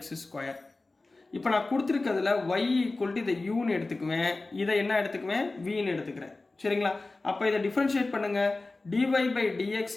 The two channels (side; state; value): right; quieter; 3.3 dB